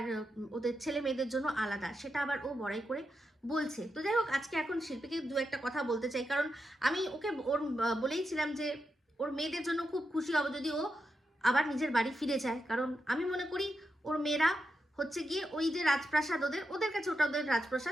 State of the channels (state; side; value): normal; both; correlation 0.87